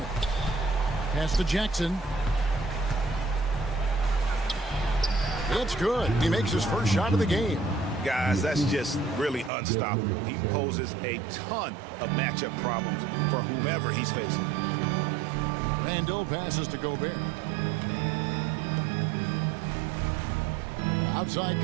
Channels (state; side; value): drops out; left; at 9.5 s